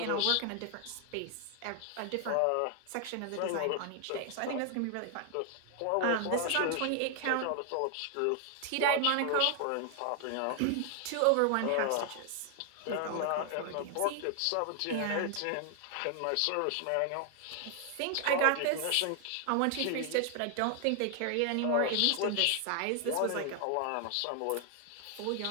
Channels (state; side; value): different; both; correlation 0.00